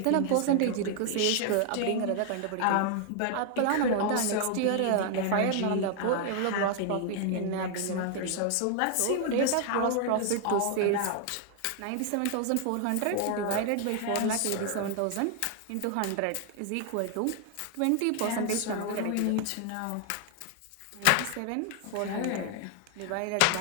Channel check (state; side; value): different; both; correlation 0.00